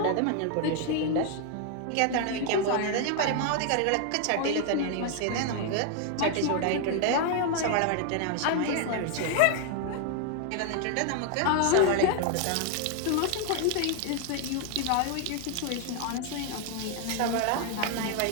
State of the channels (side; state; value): both; different; correlation 0.00